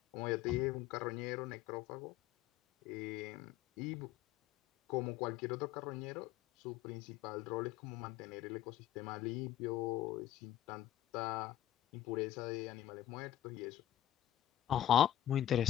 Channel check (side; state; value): right; quieter; 12.3 dB